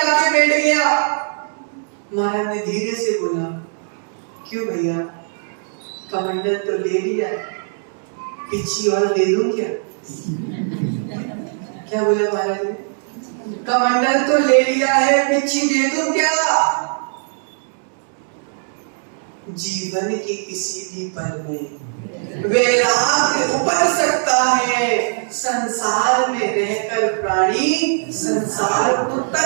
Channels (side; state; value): left; silent; digital silence